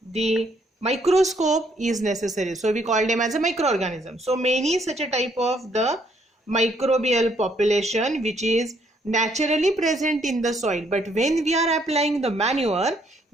the microscope is necessary, so we call them as a microorganism. So many such a type of the microbial population which is naturally present in the soil, but when we are applying the manure,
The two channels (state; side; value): normal; both; correlation 0.69